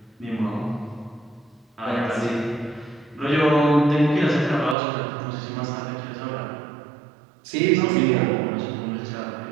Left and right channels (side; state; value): left; drops out; at 4.8 s